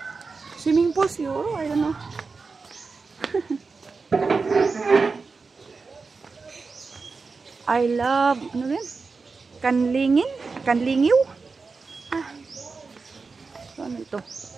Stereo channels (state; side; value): quieter; left; 4.4 dB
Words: Swimming pool siguro. I don't know. I love, ano rin? Kanlingin? Kanlingiw? Ah. So, ano ito?